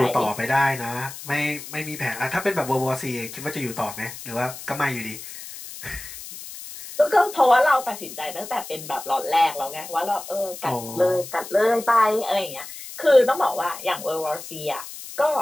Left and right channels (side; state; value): left; noise; hiss, 12 dB below the sound